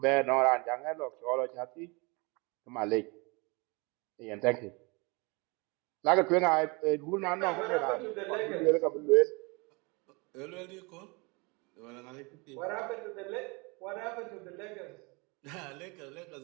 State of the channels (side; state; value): left; quieter; 28.5 dB